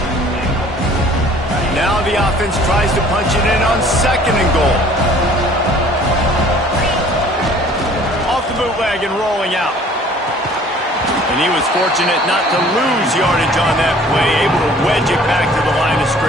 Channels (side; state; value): both; normal; correlation 0.52